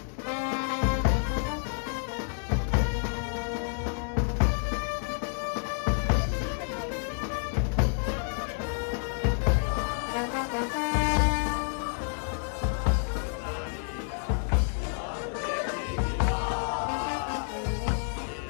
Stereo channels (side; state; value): right; silent; 58 dB below the other